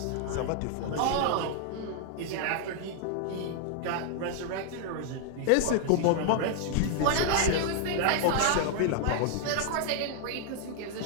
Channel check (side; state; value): both; different; correlation -0.01